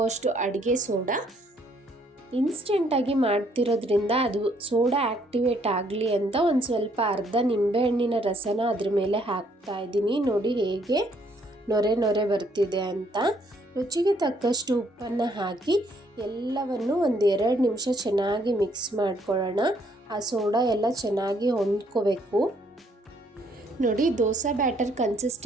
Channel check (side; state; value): both; normal; correlation 0.67